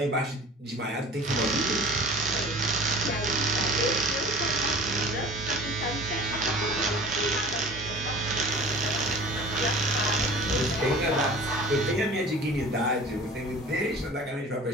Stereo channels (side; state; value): both; normal; correlation 0.42